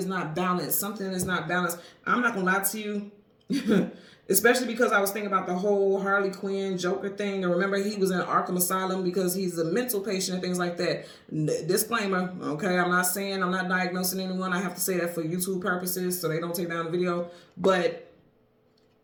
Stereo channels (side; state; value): both; identical; correlation 1.00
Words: not balanced. Something is not balanced. I'm not going to lie to you. Especially because I was thinking about the whole Harley Quinn Joker thing. And remember, he was in Arkham Asylum because he's a mental patient and things like that. Disclaimer, okay? I'm not saying, I'm not diagnosing anyone. I have to say that for YouTube purposes so they don't take down the video. But